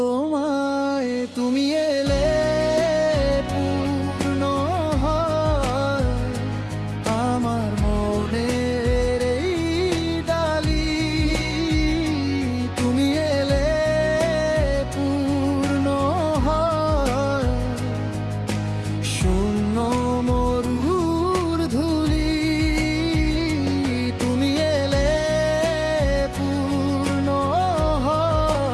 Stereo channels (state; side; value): identical; both; correlation 1.00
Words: তুমি এলে পূর্ণ হয় আমার মনের এই ডালি। তুমি এলে পূর্ণ হয় শূন্য মরুর ধুলি। তুমি এলে পূর্ণ